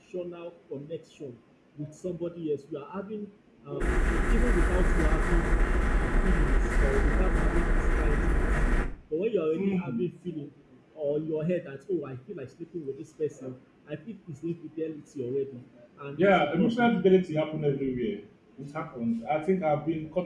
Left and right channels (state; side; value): identical; both; correlation 1.00